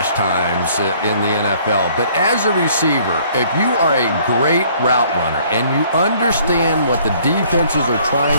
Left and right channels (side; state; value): both; inverted; correlation -0.59